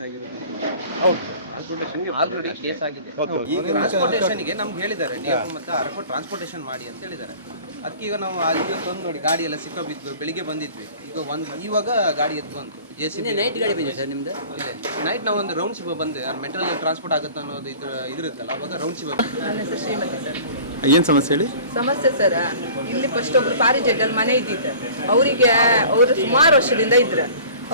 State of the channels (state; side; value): inverted; both; correlation -0.45